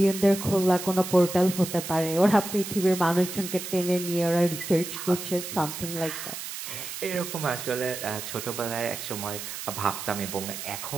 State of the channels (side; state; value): right; noise; hiss, 8 dB below the sound